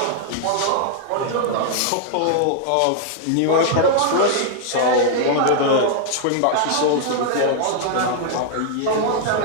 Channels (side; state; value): both; different; correlation -0.01